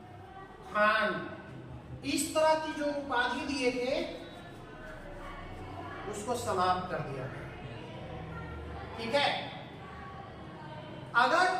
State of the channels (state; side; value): identical; both; correlation 1.00